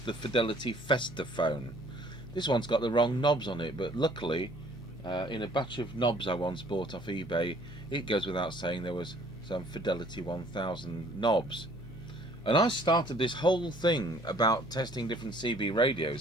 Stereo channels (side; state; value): both; normal; correlation 0.58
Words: Fidelity Festaphone. This one's got the wrong knobs on it, but luckily in a batch of knobs I once bought off eBay, it goes without saying there was some Fidelity 1000 knobs. And I started this whole thing about testing different CB